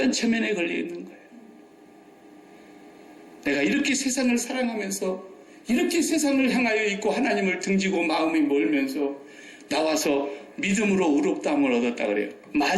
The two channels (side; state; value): both; identical; correlation 1.00